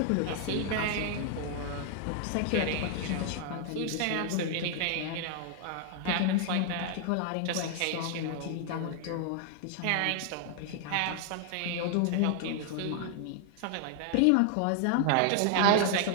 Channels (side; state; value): both; different; correlation 0.00